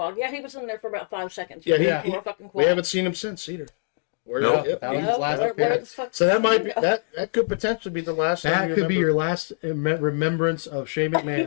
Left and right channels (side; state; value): right; silent; digital silence